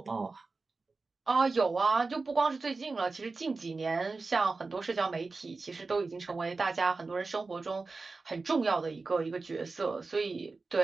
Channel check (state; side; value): quieter; left; 3.9 dB